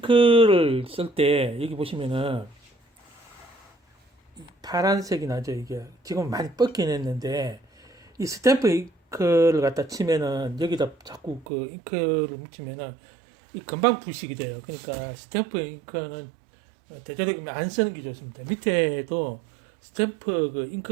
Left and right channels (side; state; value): left; drops out; at 11.5 s